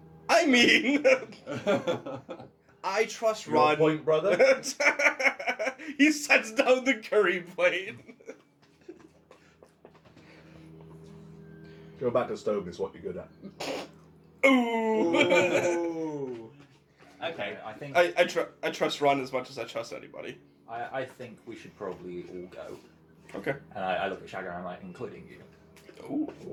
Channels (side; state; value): both; identical; correlation 1.00